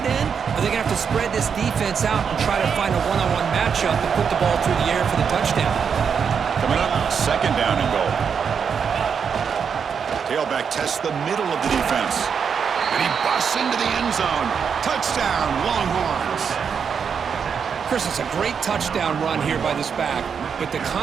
in, or they're going to have to spread this defense out and try to find a one-on-one matchup and put the ball through the air for the touchdown. Coming up, second down and goal. Tailback tests the middle of the defense. And he busts into the end zone. Touchdown, Longhorns. Chris, it's a great touchdown run here by this back, but the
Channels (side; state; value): left; quieter; 6.7 dB